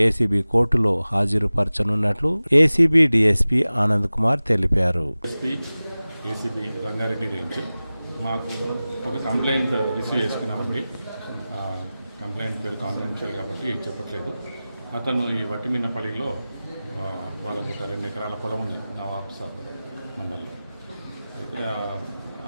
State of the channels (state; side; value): inverted; both; correlation -0.97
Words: ఏసీబీ కోర్టులో హాజరుపరచనున్నట్లు ఏసీబీ డీఎస్పీ ఆనంద్ కుమార్ తెలిపారు. ఏసీబీ రంగారెడ్డి రేంజ్ మాకు ఒక కంప్లైంట్ రిసీవ్ చేసుకున్నామండి. కంప్లైంట్ పేరు కాన్ఫిడెన్షియల్ కాబట్టి చెప్పట్లేదు. అతను ఈ వట్టిమిన్నపల్లిలో వాళ్ళకు ఒక 2 ఎకరాల పొలం ఉంది నవాబ్సాబ్ మండల్లో. అయితే